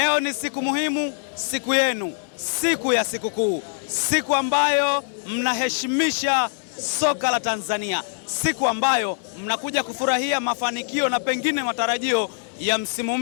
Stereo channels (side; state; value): right; silent; 63 dB below the other